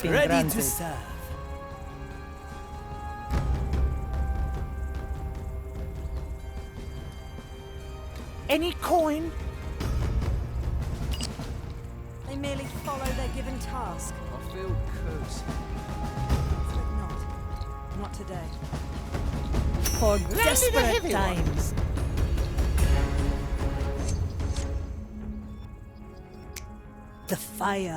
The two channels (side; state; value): both; identical; correlation 1.00